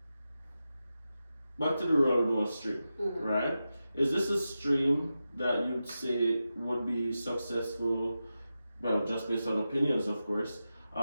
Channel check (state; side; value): inverted; both; correlation -0.91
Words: back to the Renewal stream, right? Is this a stream that you'd say would be successful, well, just based on opinions, of course,